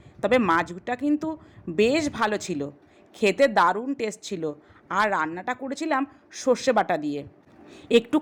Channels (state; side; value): identical; both; correlation 1.00